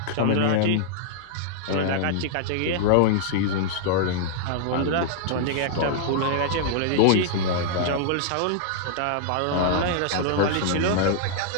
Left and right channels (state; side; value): different; both; correlation -0.01